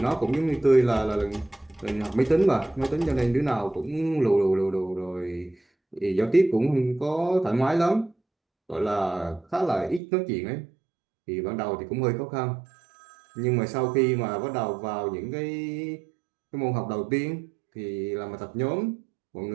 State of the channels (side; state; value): left; drops out; at 10.0 s